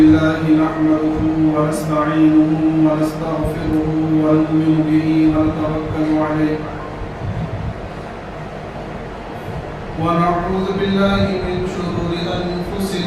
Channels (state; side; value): identical; both; correlation 1.00